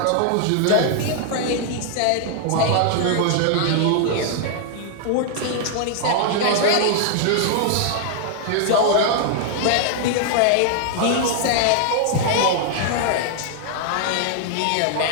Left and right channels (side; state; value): both; different; correlation -0.01